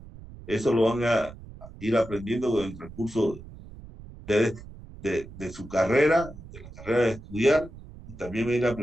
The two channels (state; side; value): noise; right; rumble, 16 dB below the sound